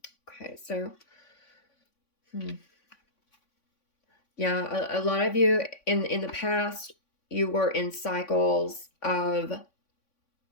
Okay, so yeah, a lot of you in the past, you were in cycles of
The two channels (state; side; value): late; right; 3.5 ms